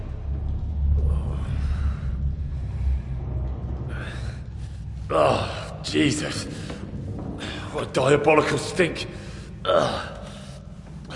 Oh, Jesus. What a diabolical stink. Ugh.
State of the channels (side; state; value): both; identical; correlation 1.00